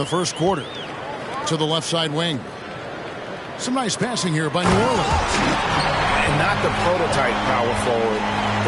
first quarter. To the left side wing. Some nice passing here by New Orleans. And not the prototype power forward,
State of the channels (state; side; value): identical; both; correlation 1.00